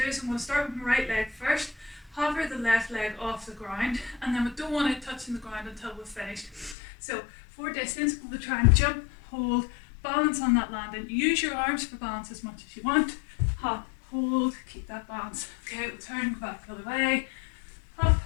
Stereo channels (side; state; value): right; drops out; at 6.8 s